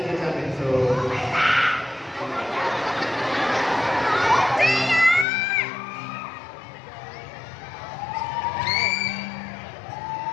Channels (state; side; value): drops out; right; at 5.2 s